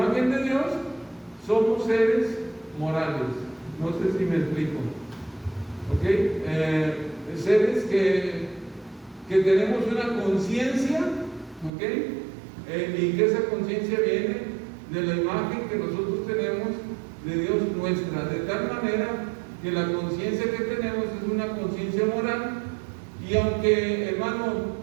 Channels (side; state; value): left; drops out; at 11.7 s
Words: de Dios, somos seres morales. No sé si me explico. ¿Ok? Seres que tenemos una conciencia, ¿ok? Y que esa conciencia viene de la imagen que nosotros tenemos de Dios nuestra, de tal manera que la conciencia que tenemos es una conciencia moral. Y aunque, hermano,